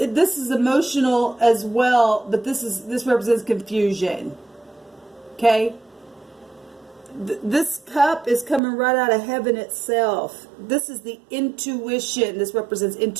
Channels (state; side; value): drops out; left; at 8.6 s